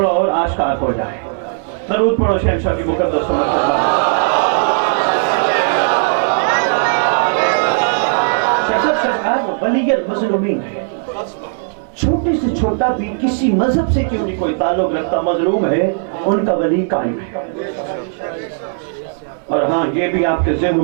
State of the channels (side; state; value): left; silent; 63 dB below the other